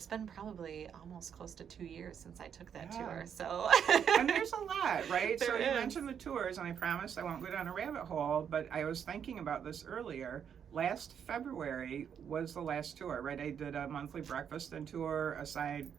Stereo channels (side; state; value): left; quieter; 8.0 dB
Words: been probably almost close to 2 years since I took that tour. So and there's a lot, right? There so is. You mentioned the tours, and I promise I won't go down a rabbit hole, but I was thinking about this earlier. Last February was the last tour, right? I did a monthly breakfast and tour aside